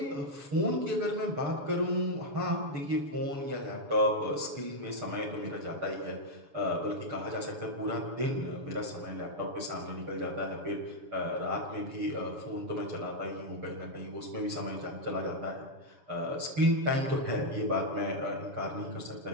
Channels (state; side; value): late; left; 7.1 ms